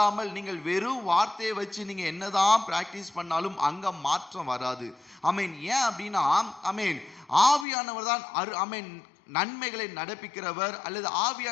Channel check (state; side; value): drops out; right; at 7.7 s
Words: நீங்கள் வெறும் வார்த்தையை வச்சு நீங்க என்னதான் பிராக்டிஸ் பண்ணாலும் அங்க மாற்றம் வராது. ஆமென். ஏன் அப்படின்னா ஆமென் ஆவியானவர் தான் ஆமென் நன்மைகளை நடப்பிக்கிறவர் அல்லது